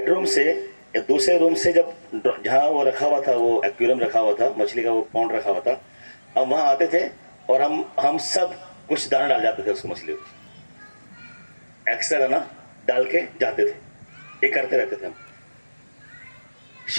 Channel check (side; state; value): both; inverted; correlation -1.00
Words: से या दूसरे रूम से, जब जहाँ वो रखा हुआ था, वो एक्वेरियम रखा हुआ था, मछली का वो पॉन्ड रखा हुआ था, हम वहाँ आते थे और हम सब कुछ दाना डाल जाते थे उसको, मछली को एक्स्ट्रा दाना डाल के जाते थे। ये करते रहते थे हम।